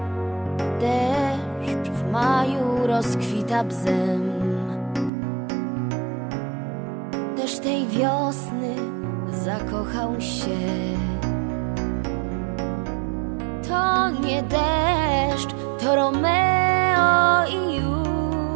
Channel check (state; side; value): drops out; left; at 5.1 s